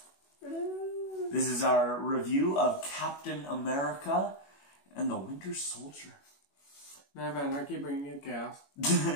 This is our review of Captain America and the Winter Soldier. Nah man, I keep bringing you gas.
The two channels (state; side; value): late; right; 21 ms